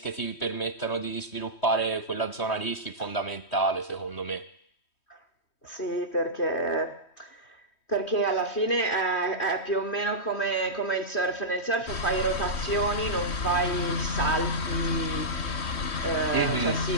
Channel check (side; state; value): right; late; 3.1 ms